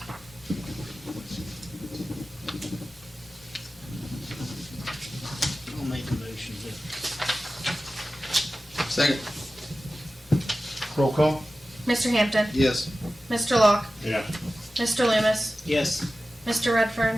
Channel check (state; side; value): normal; both; correlation 0.95